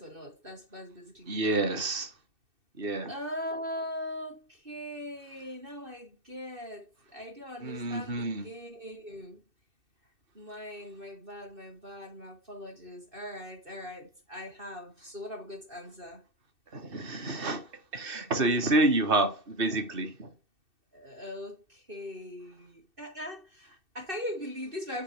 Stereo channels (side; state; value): left; late; 2.6 ms